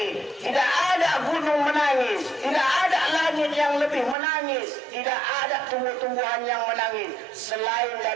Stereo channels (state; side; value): drops out; left; at 4.2 s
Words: tidak ada gunung menangis, tidak ada langit yang lebih menangis, tidak ada tumbuh-tumbuhan yang menangis selain